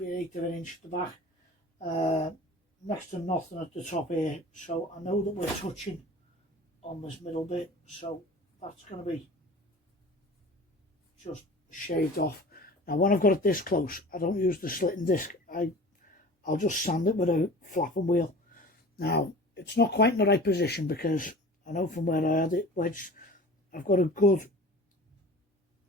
1/8 of an inch at the back. Next to nothing at the top here, so I know that we're touching on this middle bit, so that's going to be just shaved off. Now when I've got it this close, I don't use the slitting disc. I'll just sand it with a flapping wheel. Now it's not quite in the right position because I know from where I had it wedged, I've got a good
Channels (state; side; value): normal; both; correlation 0.40